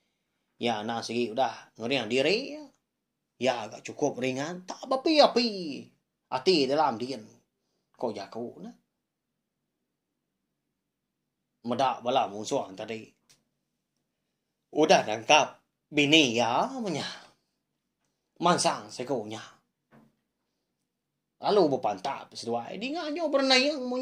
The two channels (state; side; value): identical; both; correlation 1.00